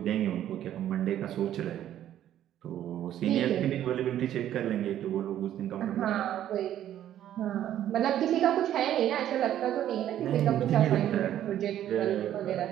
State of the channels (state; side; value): quieter; left; 11.6 dB